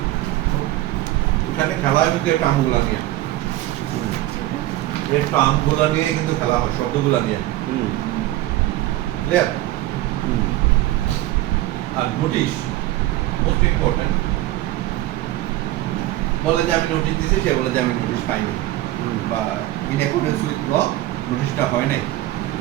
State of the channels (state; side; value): quieter; left; 15.8 dB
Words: এখানে খেলা হয় কিন্তু টার্মগুলা নিয়ে, এই টার্মগুলা নিয়ে কিন্তু খেলা হয়, শব্দগুলা নিয়ে। ক্লিয়ার? আর নোটিশ মোস্ট ইম্পর্টেন্ট। বলে যে আমি নোটিশ দিছি, সে বলে যে আমি নোটিশ পাইনি, বা ইন অ্যাকর্ডেন্স উইথ ল নোটিশটা হয় নাই,